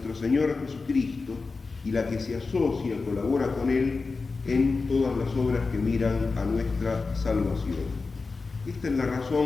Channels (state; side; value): quieter; right; 4.1 dB